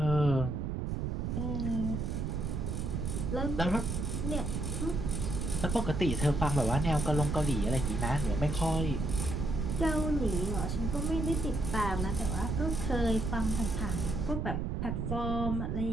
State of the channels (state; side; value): noise; right; rumble, 1 dB below the sound